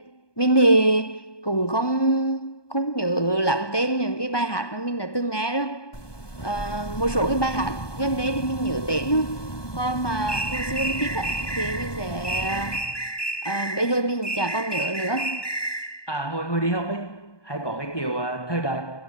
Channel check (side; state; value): right; late; 1.2 ms